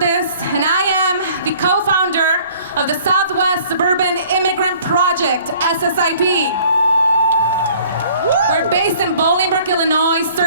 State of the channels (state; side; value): inverted; both; correlation -0.54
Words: and I am the co-founder of the Southwest Suburban Immigrant Project, SSIP. We're based in Bolingbrook, Illinois,